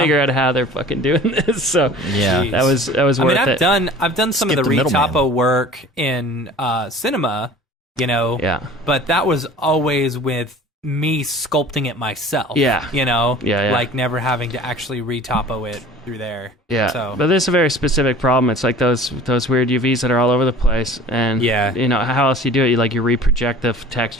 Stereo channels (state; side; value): normal; both; correlation 0.44